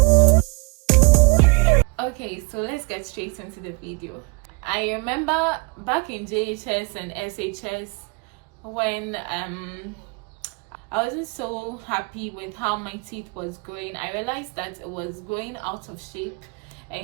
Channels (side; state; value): left; quieter; 30.1 dB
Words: Okay, so let's get straight into the video. I remember back in JHS and SHS when I wasn't so happy with how my teeth was growing. I realized that it was growing out of shape